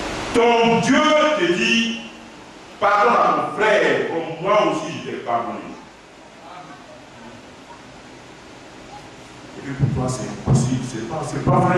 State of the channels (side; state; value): both; identical; correlation 1.00